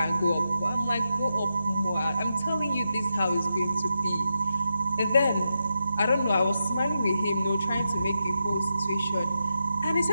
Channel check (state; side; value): inverted; both; correlation -0.86